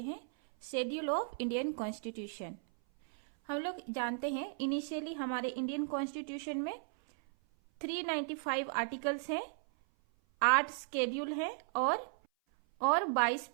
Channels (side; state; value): left; silent; 54 dB below the other